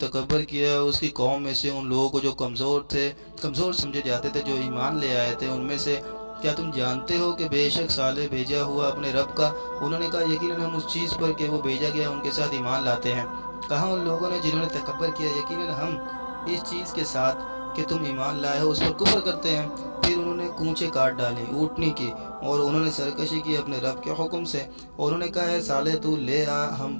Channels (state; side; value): inverted; both; correlation -1.00